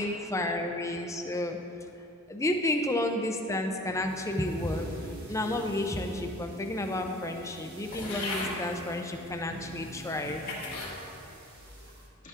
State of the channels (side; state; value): both; normal; correlation 0.48